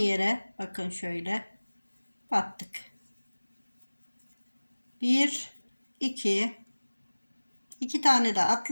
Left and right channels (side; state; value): both; inverted; correlation -1.00